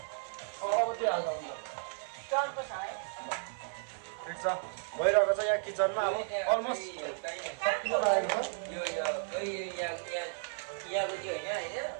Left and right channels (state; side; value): silent; left; 55 dB below the other